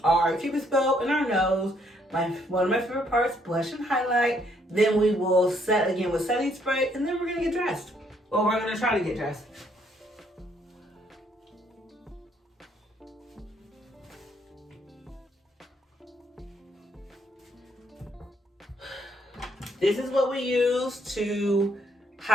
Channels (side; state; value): both; normal; correlation 0.69